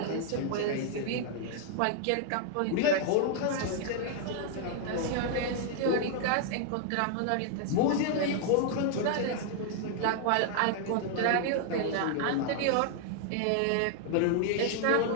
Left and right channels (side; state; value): both; different; correlation 0.00